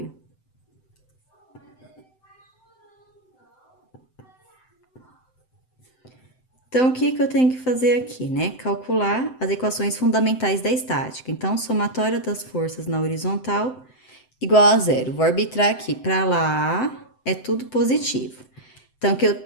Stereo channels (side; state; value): right; late; 7.8 ms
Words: Então, o que que eu tenho que fazer aqui, né? Calcular as equações fundamentais da estática. Então, somatória das forças na horizontal igual a zero. Vou arbitrar aqui, para lá é tudo positivo. Então,